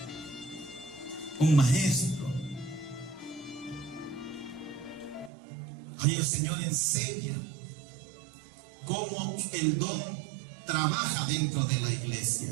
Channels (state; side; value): drops out; left; at 5.3 s